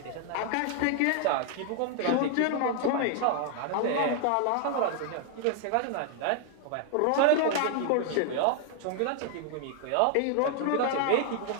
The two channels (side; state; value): both; different; correlation 0.00